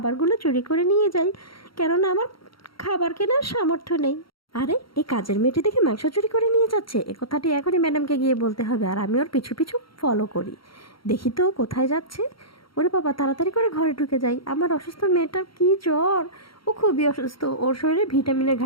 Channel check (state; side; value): late; right; 0.74 ms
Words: চুরি করে নিয়ে যাই, কেননা আমার খাবার কেনার সামর্থ্য নেই। আরে এই কাজের মেয়েটি দেখে মাংস চুরি করে নিয়ে যাচ্ছে, এ কথাটি এখনই ম্যাডামকে গিয়ে বলতে হবে। আর আমি ওর পিছু পিছু ফলো করি, দেখি তো ও কোথায় যাচ্ছে। ওরে বাবা, তাড়াতাড়ি করে ঘরে ঢুকে যাই। আমার অসুস্থ মেয়েটার কি জ্বর, ও খুবই অসুস্থ, ওর শরীরে ভিটামিনের